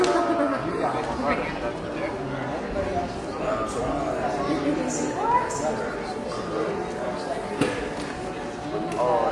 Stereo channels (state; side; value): identical; both; correlation 1.00